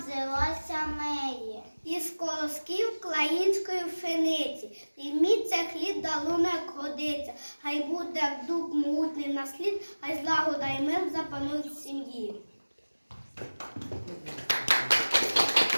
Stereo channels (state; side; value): inverted; both; correlation -1.00